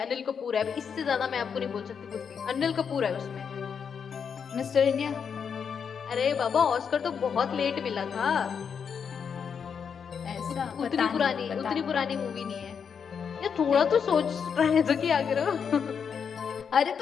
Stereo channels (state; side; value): quieter; right; 6.8 dB